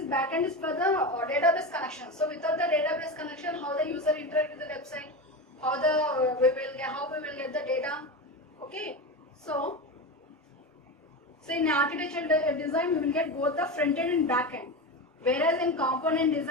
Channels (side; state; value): both; normal; correlation 0.21